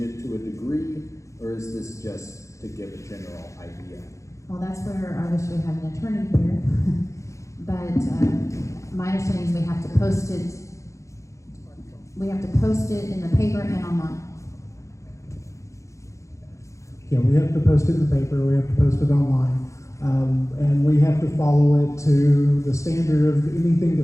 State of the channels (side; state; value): right; late; 0.15 ms